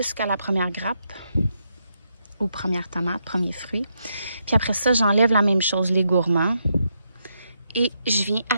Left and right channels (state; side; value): inverted; both; correlation -0.81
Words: la première grappe, ou première tomate, premier fruit. Puis après ça, j'enlève la même chose, les gourmands. Et je viens